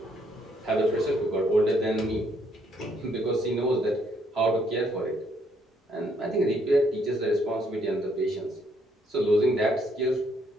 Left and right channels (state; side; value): normal; both; correlation 0.70